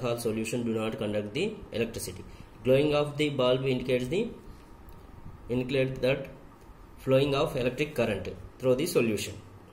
solution do not conduct the electricity. Glowing of the bulb indicates that flowing of electric current through the solution.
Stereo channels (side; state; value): both; identical; correlation 1.00